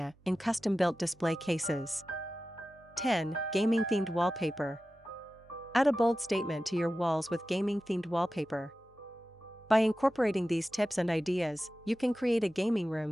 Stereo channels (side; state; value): both; normal; correlation 0.94